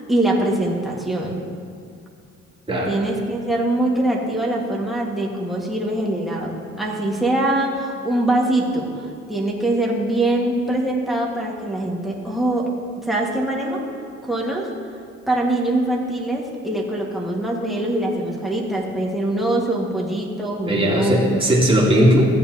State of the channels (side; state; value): both; normal; correlation 0.64